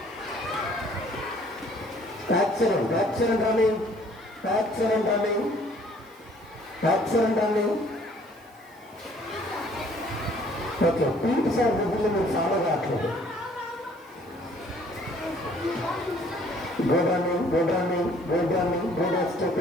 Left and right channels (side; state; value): right; noise; hiss, 29 dB below the sound